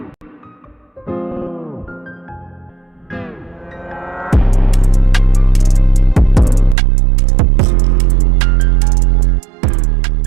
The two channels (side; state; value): left; drops out; at 6.8 s